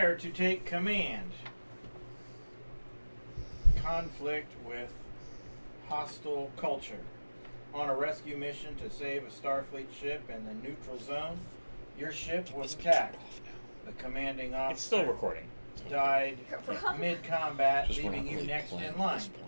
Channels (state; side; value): inverted; both; correlation -1.00